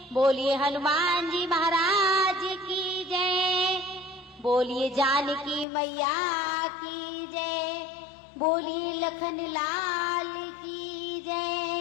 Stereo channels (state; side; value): drops out; right; at 5.7 s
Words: बोलिए हनुमान जी महाराज की जय, बोलिए जानकी मैया की जय, बोलिए लखन लाल की